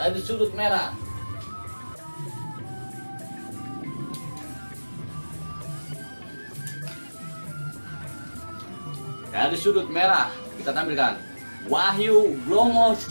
sudut merah. Dari sudut merah kita tampilkan Wahyu Blomo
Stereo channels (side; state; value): both; inverted; correlation -1.00